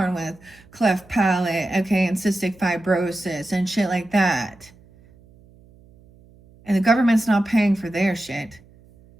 with cleft palate, okay, and cystic fibrosis and shit like that. And the government's not paying for their shit.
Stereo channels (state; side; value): noise; right; hum, 27 dB below the sound